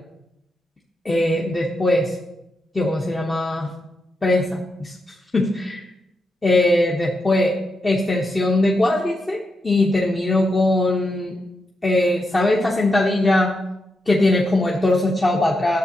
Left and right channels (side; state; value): both; normal; correlation 0.85